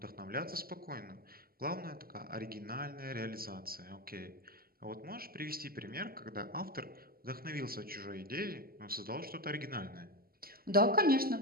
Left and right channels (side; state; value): left; late; 0.43 ms